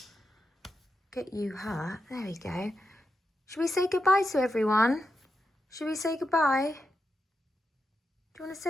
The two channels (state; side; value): normal; both; correlation 0.86